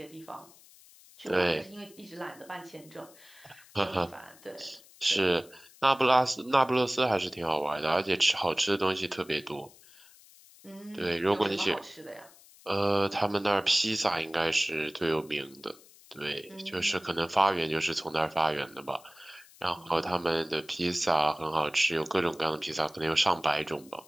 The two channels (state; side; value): noise; left; hiss, 24 dB below the sound